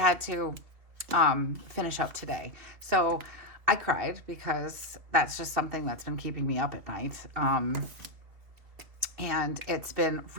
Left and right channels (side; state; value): left; late; 2.8 ms